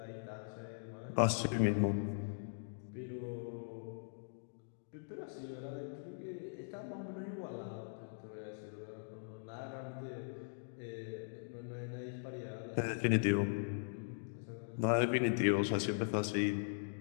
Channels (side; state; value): right; silent; digital silence